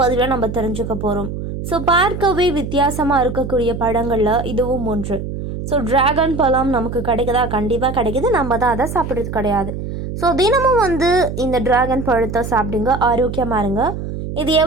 பதிவில் நம்ம தெரிஞ்சுக்க போகிறோம். ஸோ பார்க்கவே வித்தியாசமாக இருக்கக்கூடிய பழங்களில் இதுவும் ஒன்று. ஸோ டிராகன் பழம் நமக்கு கிடைக்குதா? கண்டிப்பாக கிடைக்குது. நம்ம தான் அதை சாப்பிட்றது கிடையாது. ஸோ தினமும் இந்த டிராகன் பழத்தை சாப்பிடுங்க, ஆரோக்கியமாக இருங்க. இது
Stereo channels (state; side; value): noise; right; hum, 6 dB below the sound